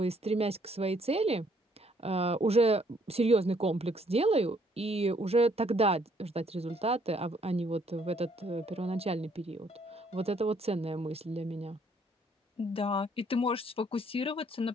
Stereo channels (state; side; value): normal; both; correlation 0.66